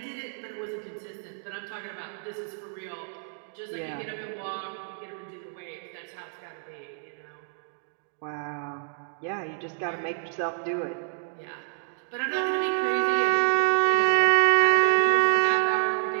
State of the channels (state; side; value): silent; left; digital silence